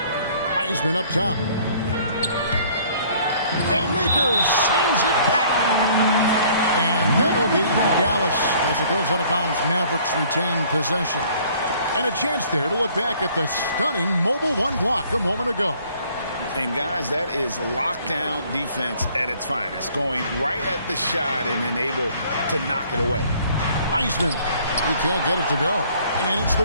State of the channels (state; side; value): inverted; both; correlation -0.57